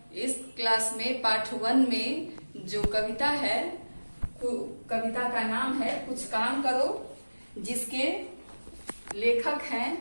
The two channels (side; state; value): both; inverted; correlation -1.00